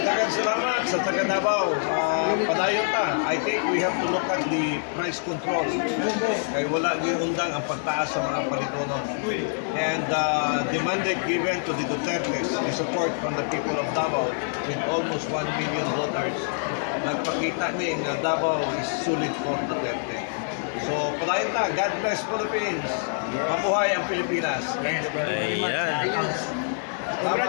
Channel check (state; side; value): silent; right; digital silence